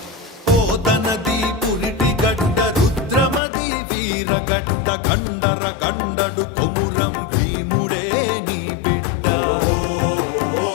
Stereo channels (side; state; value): right; drops out; at 3.4 s